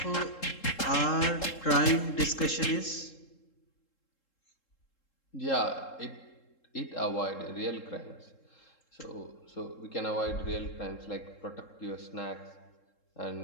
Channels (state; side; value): late; right; 3.7 ms